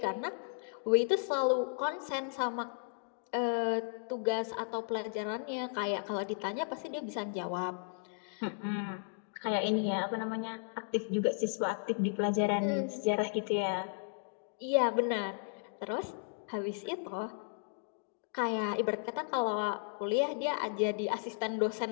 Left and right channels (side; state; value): right; silent; digital silence